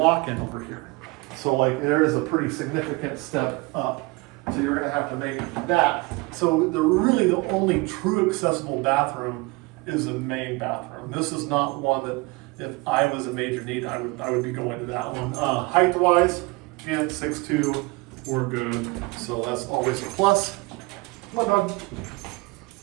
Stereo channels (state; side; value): quieter; left; 24.8 dB